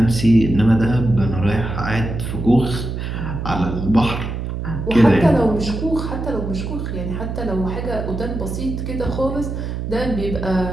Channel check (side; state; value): right; noise; hum, 5 dB below the sound